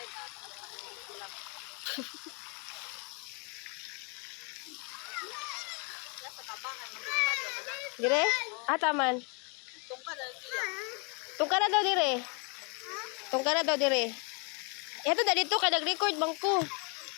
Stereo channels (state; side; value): quieter; right; 33.9 dB